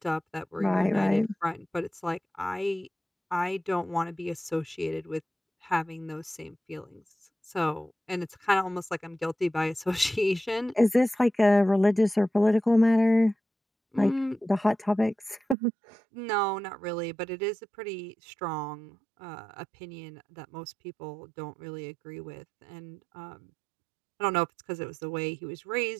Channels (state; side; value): drops out; left; at 15.6 s